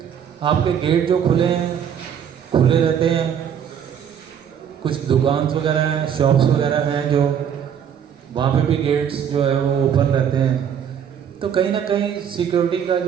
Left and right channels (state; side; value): quieter; left; 8.4 dB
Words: आपके गेट जो खुले रहते हैं, कुछ दुकान वगैरह हैं, शॉप्स वगैरह हैं जो वहाँ पे भी गेट्स जो है वो ओपन रहते हैं। तो कहीं ना कहीं सिक्योरिटी का